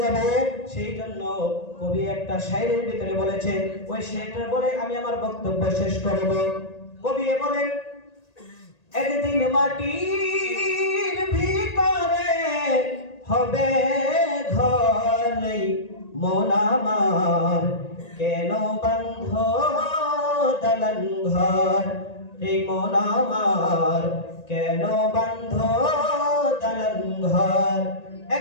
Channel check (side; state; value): right; late; 1.8 ms